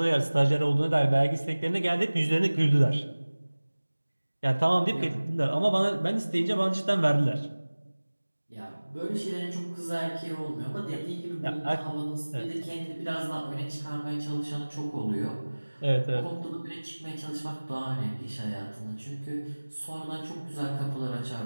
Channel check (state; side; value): inverted; both; correlation -1.00